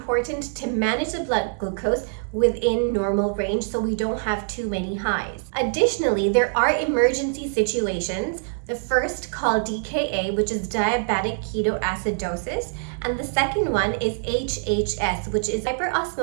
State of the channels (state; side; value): silent; left; 63 dB below the other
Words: to manage the blood glucose within normal range so we don't have too many highs. Additionally, there are emergency situations. The first called DKA, which is diabetic ketoacidosis, and the second one is HHS, which is